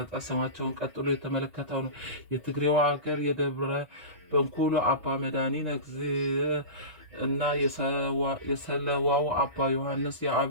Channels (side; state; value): left; late; 2.3 ms